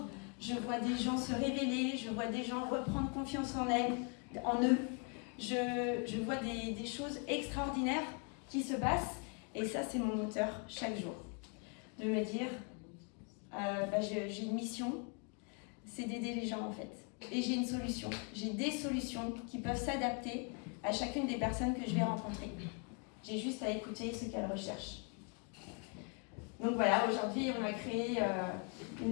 je vois des gens se révéler, je vois des gens reprendre confiance en eux. Je vois des choses extraordinaires qui se passent et ça c'est mon moteur chaque jour. De me dire, j'ai une mission, c'est d'aider les gens en fait. Et j'ai une solution, j'ai des solutions qui peuvent s'adapter à chacune des personnes que je vais rencontrer. J'ai juste à écouter ce qu'elles recherchent. Donc voilà, aujourd'hui on a créé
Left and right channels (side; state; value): right; quieter; 37.4 dB